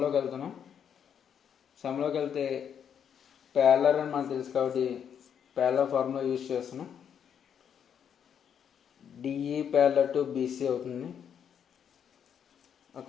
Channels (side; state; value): right; quieter; 8.2 dB